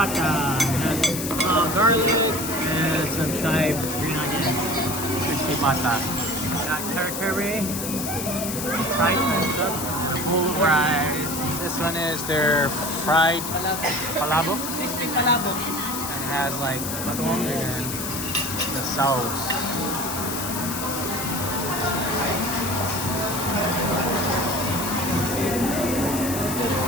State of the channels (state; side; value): noise; left; hiss, 5 dB below the sound